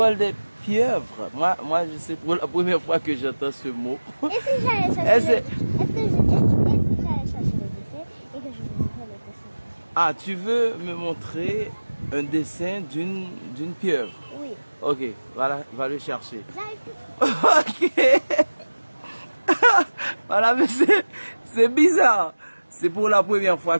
des pieuvres. Moi, je sais pour la première fois que j'entends ce mot. Et si j'allais chercher le dessin et que je vous montre le dessin? Ah, tu veux me montrer un dessin d'une pieuvre? Oui. Ok, voilà, va le chercher. J'arrive. Ok. Voilà, mais c'est bizarre. C'est pour la première fois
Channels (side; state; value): both; inverted; correlation -1.00